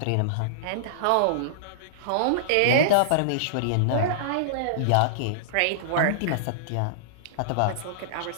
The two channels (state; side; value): different; both; correlation -0.02